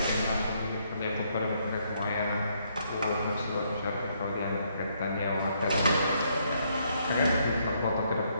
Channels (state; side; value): inverted; both; correlation -0.72